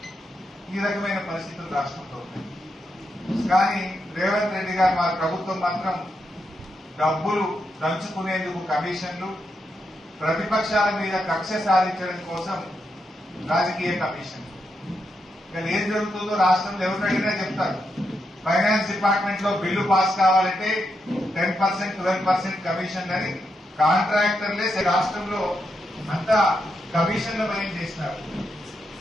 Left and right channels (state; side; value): normal; both; correlation 0.83